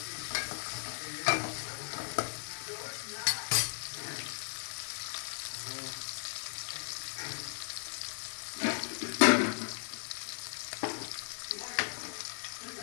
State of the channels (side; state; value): right; silent; 54 dB below the other